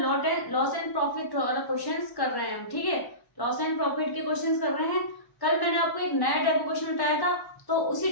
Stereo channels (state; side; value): late; right; 1.1 ms